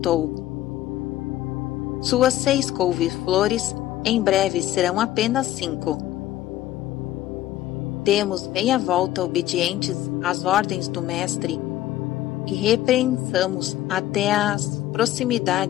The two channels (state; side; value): quieter; right; 14.2 dB